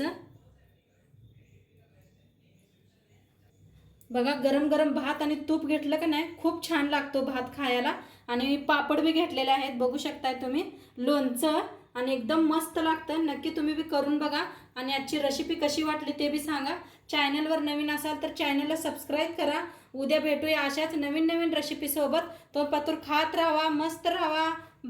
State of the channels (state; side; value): identical; both; correlation 1.00